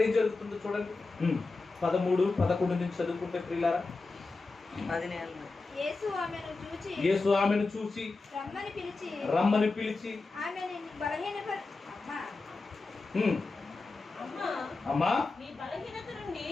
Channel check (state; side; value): quieter; right; 3.7 dB